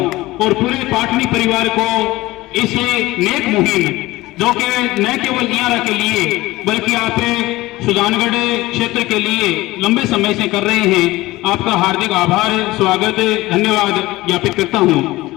और पूरे पाटनी परिवार को इस नेक मुहिम जो कि न केवल इयारा के लिए बल्कि आप सुजानगढ़ क्षेत्र के लिए लंबे समय से कर रहे हैं, आपका हार्दिक आभार, स्वागत, धन्यवाद ज्ञापित करता हूं।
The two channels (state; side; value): quieter; right; 18.9 dB